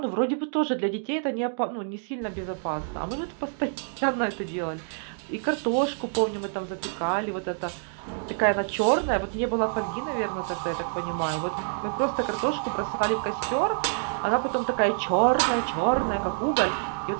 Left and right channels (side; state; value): left; silent; digital silence